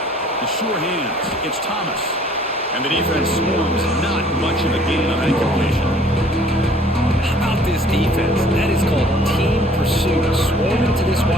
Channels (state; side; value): normal; both; correlation 0.56